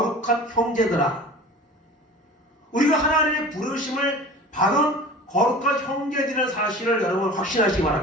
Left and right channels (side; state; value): both; normal; correlation 0.39